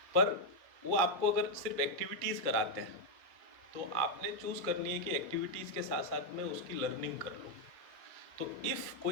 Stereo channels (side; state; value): both; normal; correlation 0.01